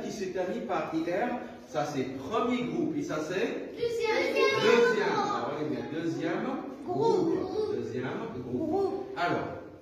qui se termine par IR, ça c'est premier groupe. Et ça c'est deuxième. Alors, regardez bien, deuxième groupe. Deuxième groupe. Alors,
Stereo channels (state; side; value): identical; both; correlation 1.00